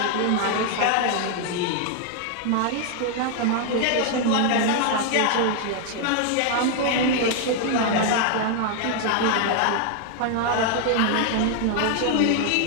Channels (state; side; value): different; both; correlation 0.00